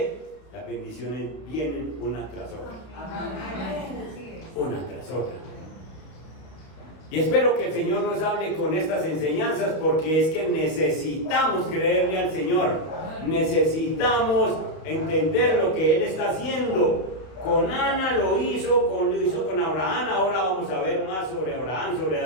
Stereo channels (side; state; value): right; late; 31 ms